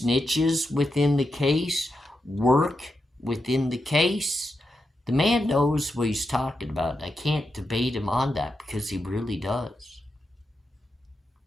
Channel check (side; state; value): both; normal; correlation 0.87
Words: within the case work within the case. The man knows what he's talking about. I can't debate him on that because he really does.